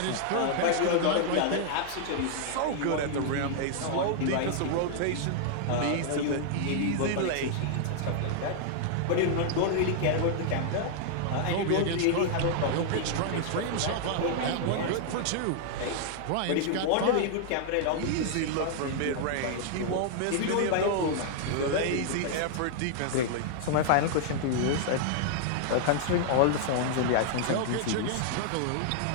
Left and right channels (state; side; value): different; both; correlation -0.01